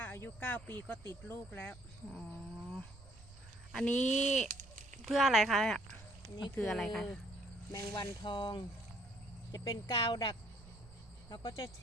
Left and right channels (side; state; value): right; noise; rumble, 19 dB below the sound